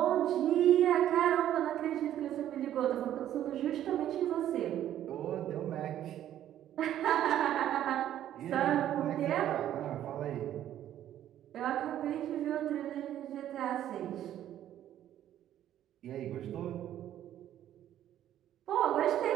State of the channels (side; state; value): left; quieter; 11.7 dB